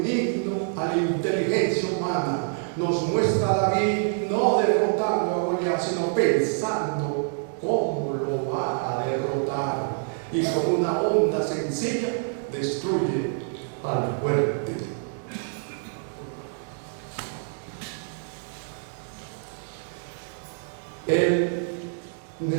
himno a la inteligencia humana. Nos muestra a David no derrotando a Goliat, sino pensando cómo lo va a derrotar. Y con una onda sencilla destruye al fuerte. En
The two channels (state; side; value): silent; left; digital silence